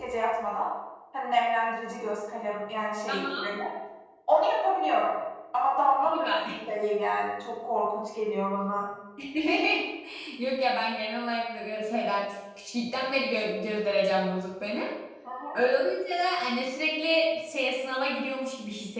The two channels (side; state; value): both; identical; correlation 1.00